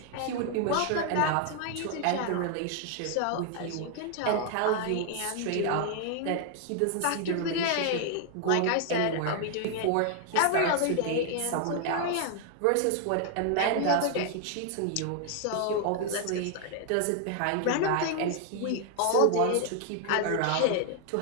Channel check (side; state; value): both; different; correlation 0.00